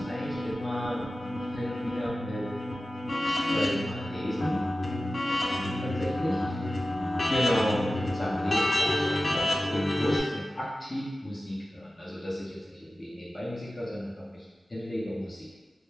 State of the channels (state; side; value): normal; both; correlation 0.95